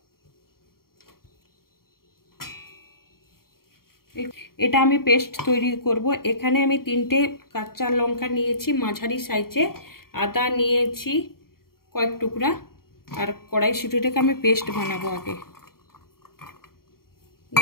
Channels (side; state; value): right; late; 0.93 ms